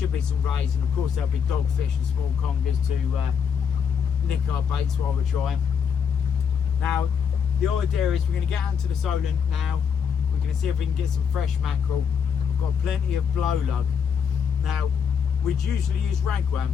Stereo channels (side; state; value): right; quieter; 7.0 dB